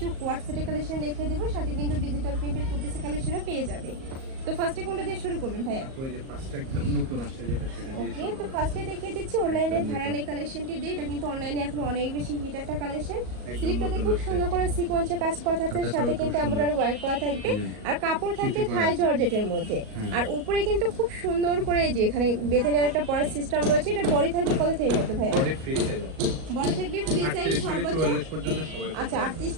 কোয়ার্ট সেটের কালেকশন দেখিয়ে দেবো, সাথে কিন্তু ডিজিটাল প্রিন্টের টু পিসের কালেকশনও পেয়ে যাবে। তো ফার্স্টে কোনটা দিয়ে শুরু করবেন ভাইয়া? ওই যে পাঁচটা একদম নতুন আসছে যেটা সেটা দিয়ে ওকে, তো ফার্স্টে দেখিয়ে দিচ্ছি অনলাইনে ভাইরাল এই কালেকশনটি দিয়ে। এটা কিন্তু অনলাইনে এখন অনেক বেশি হিট একটা কালেকশন। স্লিপটাতে খুব সুন্দর করে সিকোয়েন্সে কাজ করা থাকছে, সাথে কিন্তু এমব্রয়ডারি ওয়ার্ক করা থাকবে, আর কাপড় থাকবে থাই জর্জেটের মধ্যে। আর উপরে কিন্তু খুব সুন্দর করে যে এখানে বেঁধে নেওয়ার একটা পরার সিস্টেম রয়েছে। এটা বডি থাকবে কত থেকে কত ভাইয়া? বডি ফ্রি সাইজ আছে, বডি থাকবে ফ্রি সাইজ সর্বোচ্চ 44 পর্যন্ত সবাই। আচ্ছা, 38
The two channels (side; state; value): left; late; 38 ms